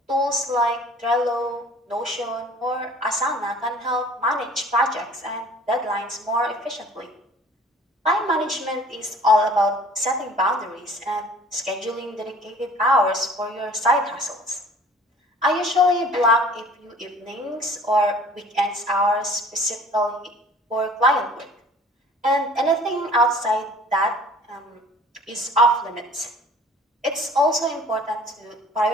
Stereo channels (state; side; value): normal; both; correlation 0.50